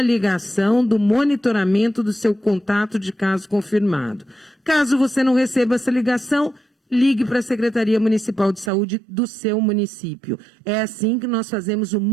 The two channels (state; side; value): drops out; left; at 8.7 s